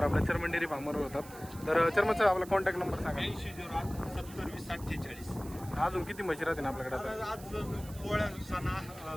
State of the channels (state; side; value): noise; right; hiss, 18 dB below the sound